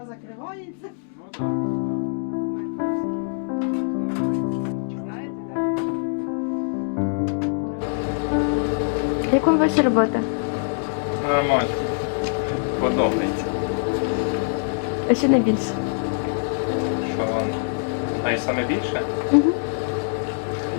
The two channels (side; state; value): right; silent; digital silence